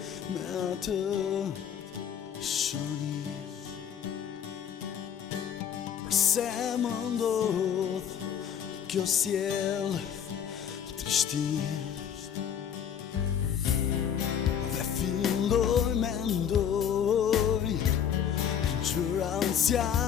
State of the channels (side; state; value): right; quieter; 8.5 dB